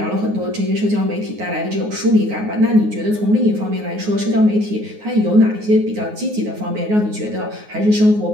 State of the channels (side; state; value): left; late; 9.5 ms